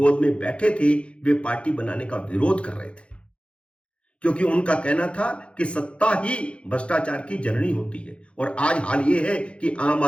में बैठे थे वे पार्टी बनाने का विरोध कर रहे थे, क्योंकि उनका कहना था कि सत्ता ही भ्रष्टाचार की जननी होती है। और आज हाल यह है कि आम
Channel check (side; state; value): right; late; 0.059 ms